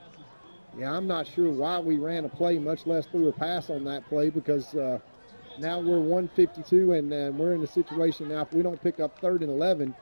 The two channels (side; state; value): both; inverted; correlation -1.00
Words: Yeah, I'm not sure why we ran a play, much less threw a pass on that play, because now we're 152, and we're in a situation now, if we don't pick up 3rd and 11,